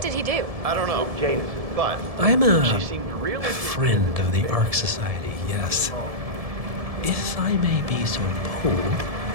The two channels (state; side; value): late; left; 1.7 ms